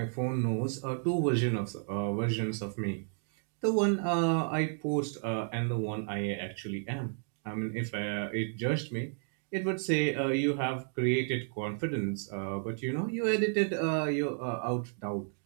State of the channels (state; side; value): silent; left; 56 dB below the other